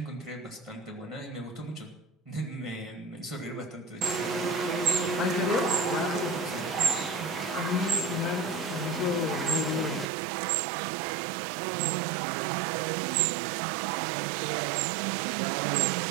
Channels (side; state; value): left; drops out; at 10.1 s